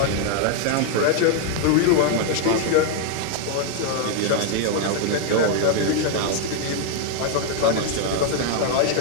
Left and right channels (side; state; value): both; different; correlation 0.00